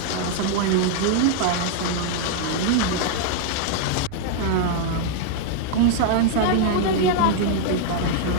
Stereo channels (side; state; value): both; different; correlation 0.00